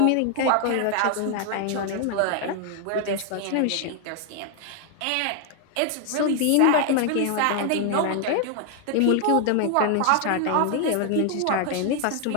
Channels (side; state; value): both; different; correlation 0.00